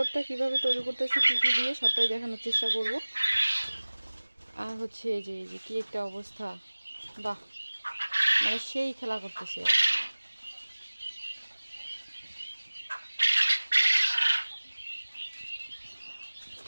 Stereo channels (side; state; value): both; inverted; correlation -1.00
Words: কিভাবে তৈরি করতেছি, কী কী দিয়ে, সবটাই দেখানোর চেষ্টা করব। আর হচ্ছে এই যে কি একটা অবস্থা, বাহ, মানে সেই খেলা করতেছে।